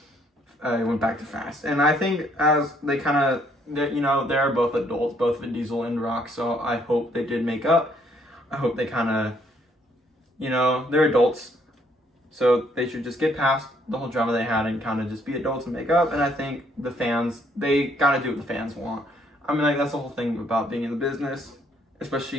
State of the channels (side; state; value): both; normal; correlation 0.67